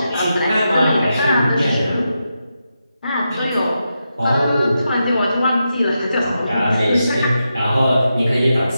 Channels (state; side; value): inverted; both; correlation -0.87